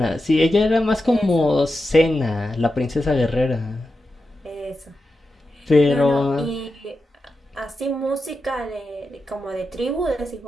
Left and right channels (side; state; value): both; normal; correlation 0.90